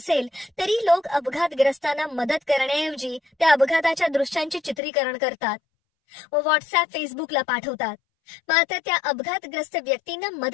तरी लोक अपघातग्रस्तांना मदत करण्याऐवजी त्या अपघाताच्या दृश्यांचे चित्रीकरण करतात व व्हॉट्सअप, फेसबुकला पाठवतात. मात्र त्या अपघातग्रस्त व्यक्तींना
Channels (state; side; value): drops out; right; at 4.8 s